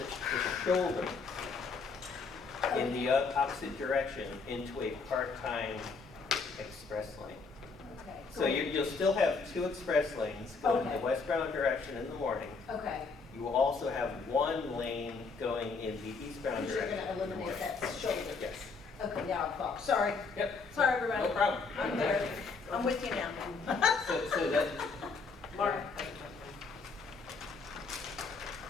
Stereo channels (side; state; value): right; quieter; 4.6 dB